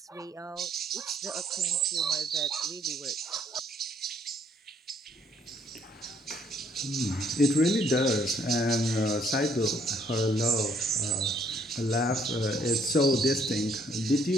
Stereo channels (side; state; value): both; normal; correlation 0.66